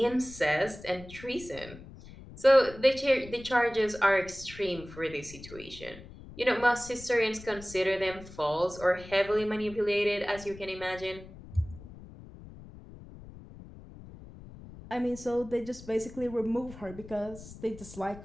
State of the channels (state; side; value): noise; left; rumble, 16 dB below the sound